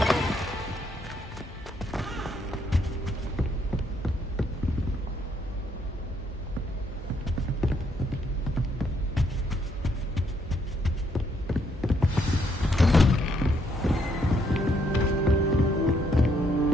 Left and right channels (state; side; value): normal; both; correlation 0.72